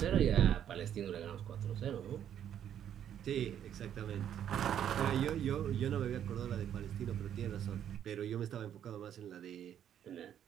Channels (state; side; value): quieter; left; 9.8 dB